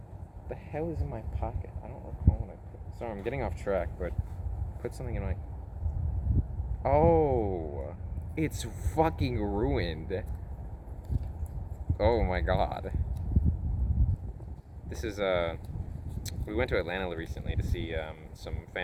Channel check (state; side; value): identical; both; correlation 1.00